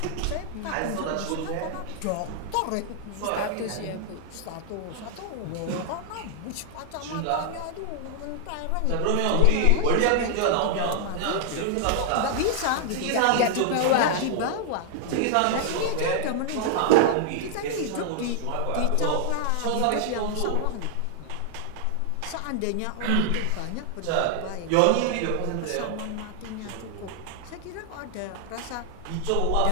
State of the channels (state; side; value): different; both; correlation 0.00